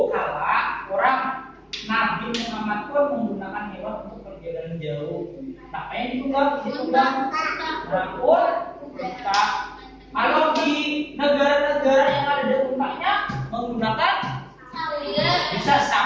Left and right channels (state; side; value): identical; both; correlation 1.00